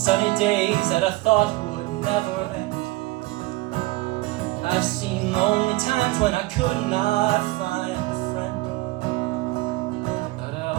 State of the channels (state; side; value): quieter; left; 20.4 dB